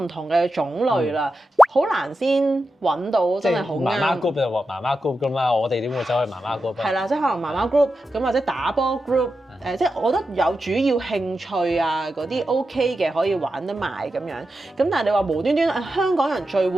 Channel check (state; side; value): normal; both; correlation 0.90